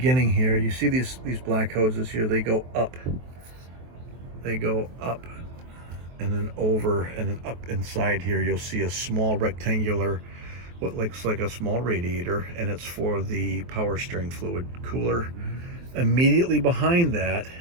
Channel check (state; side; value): late; left; 23 ms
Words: here, you see these black hoses here, they go up. They go up and then over and then up inside here. You'll see a small rectangular, what looks like a small radiator, and it's for the power steering fluid cooler. Immediately behind that